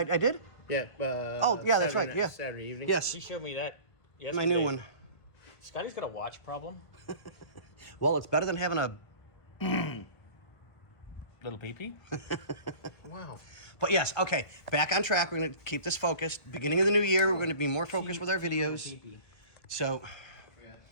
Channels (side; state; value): right; late; 1.7 ms